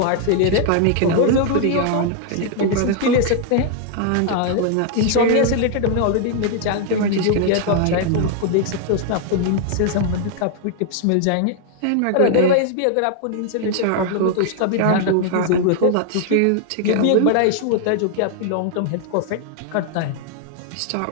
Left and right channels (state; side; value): different; both; correlation 0.00